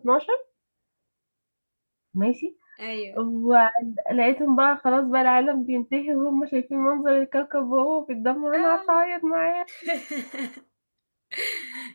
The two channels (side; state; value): both; inverted; correlation -1.00